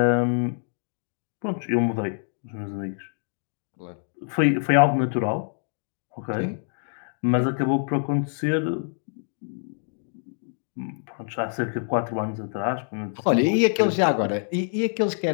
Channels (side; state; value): right; silent; digital silence